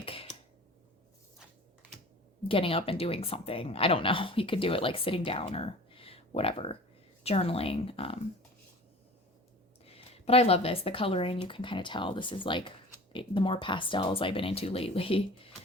getting up and doing something. I don't know. You could do it like sitting down or whatever, journaling. But I love this. The coloring, you can kind of tell this is like the more pastels I've been into lately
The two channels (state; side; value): normal; both; correlation 0.41